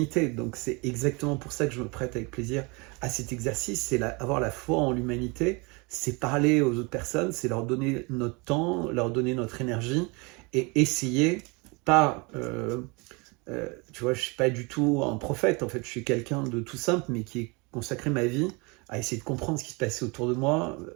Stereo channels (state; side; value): quieter; left; 28.5 dB